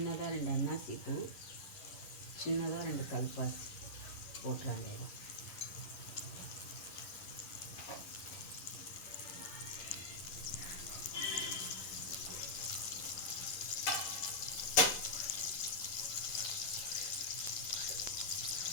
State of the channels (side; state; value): right; late; 11 ms